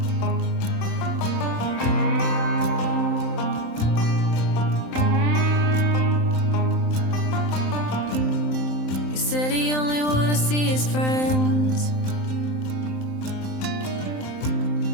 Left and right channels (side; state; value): right; late; 27 ms